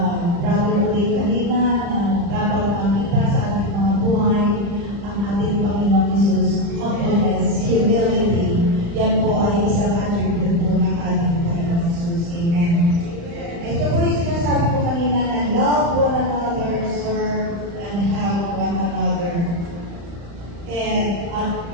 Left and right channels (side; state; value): left; late; 35 ms